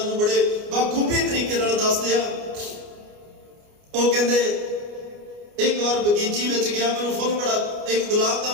ਨੂੰ ਬੜੇ ਬਾਖੂਬੀ ਤਰੀਕੇ ਨਾਲ ਦੱਸਦੇ ਆ। ਉਹ ਕਹਿੰਦੇ ਇੱਕ ਵਾਰ ਬਗੀਚੀ ਵਿੱਚ ਗਿਆ, ਮੈਨੂੰ ਫੁੱਲ ਬੜਾ, ਇੱਕ ਗੁਲਾਬ ਦਾ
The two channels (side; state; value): left; late; 29 ms